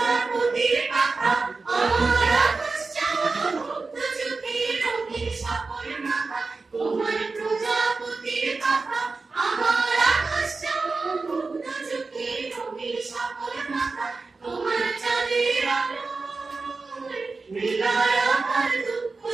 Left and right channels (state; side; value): quieter; left; 4.0 dB